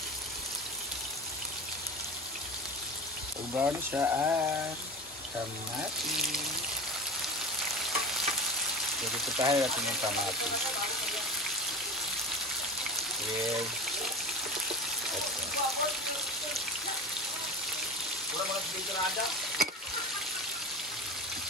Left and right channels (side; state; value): both; normal; correlation 0.30